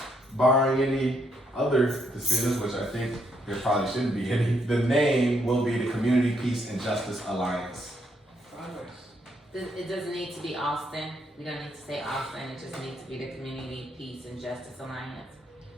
barring any other decisions, which I think there probably shouldn't be any, the name will be the Community Peace and Justice Alliance. It doesn't need to be Austin. We don't need to say Austin. It just needs to be the Community Peace and Justice Alliance.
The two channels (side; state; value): both; normal; correlation 0.74